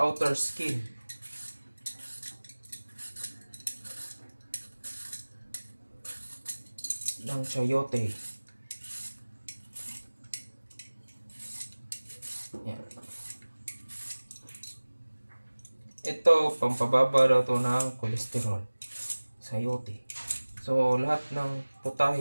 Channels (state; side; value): inverted; both; correlation -1.00